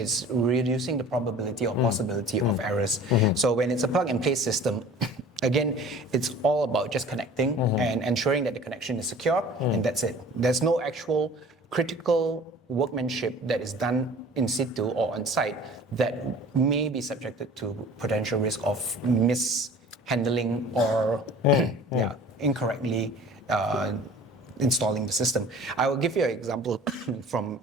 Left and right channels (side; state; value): both; normal; correlation 0.45